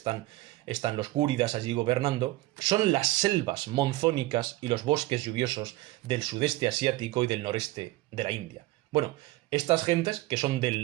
los gúridas allí gobernando, son las selvas monzónicas y los bosques lluviosos del sudeste asiático y del noreste de la India. Bueno, estas gentes, que son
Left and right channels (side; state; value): left; quieter; 18.3 dB